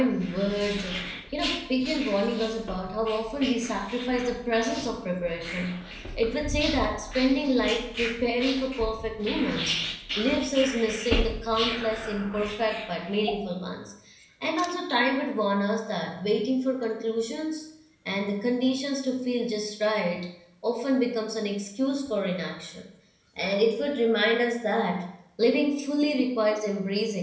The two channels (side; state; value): both; identical; correlation 1.00